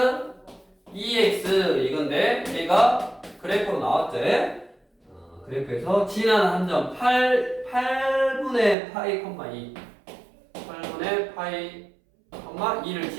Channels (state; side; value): drops out; left; at 8.8 s